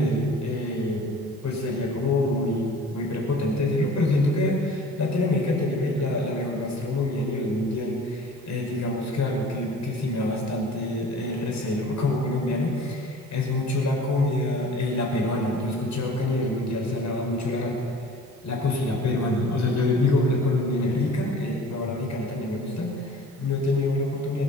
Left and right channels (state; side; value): normal; both; correlation 0.45